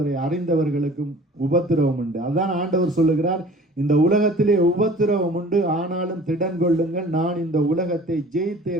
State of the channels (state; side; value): normal; both; correlation 0.47